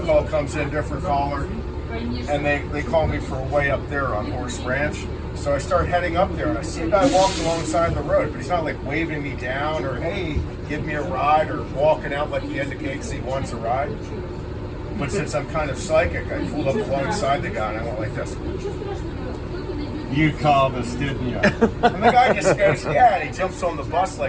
call comes in, different caller, and they call me for a way up there on Horse Ranch. So I start heading up there, and I see a guy walking alongside the road, but he's not like waving me down or, "Hey, give me a ride," or walking out like he indicates he wants a ride. But since I'm kind of psychic, I pulled up alongside the guy and I went like this. "You called us, didn't you?" And the guy just goes, "Yeah," and he jumps on the bus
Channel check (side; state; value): both; identical; correlation 1.00